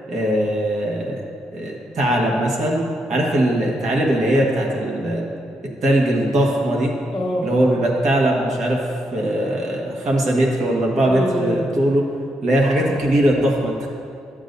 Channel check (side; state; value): both; normal; correlation 0.81